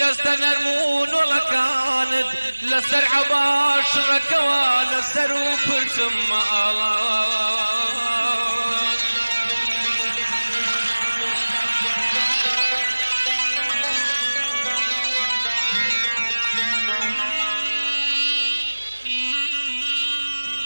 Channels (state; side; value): inverted; both; correlation -1.00